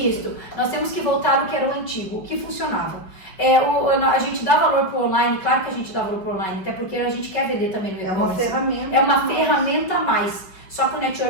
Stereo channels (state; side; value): late; right; 5.5 ms